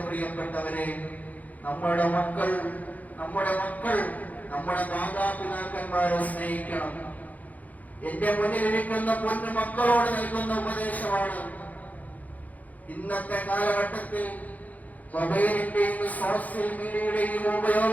പ്രിയപ്പെട്ടവരെ, നമ്മുടെ മക്കൾ നമ്മുടെ മാതാപിതാക്കന്മാരെ സ്നേഹിക്കണം. എന്റെ മുന്നിലിരിക്കുന്ന പൊന്നു മക്കളോട് നൽകുന്ന ഉപദേശമാണ്. ഇന്നത്തെ കാലഘട്ടത്തിൽ മൊബൈലിന്റെയും സോഷ്യൽ മീഡിയയുടെയും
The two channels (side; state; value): right; late; 0.078 ms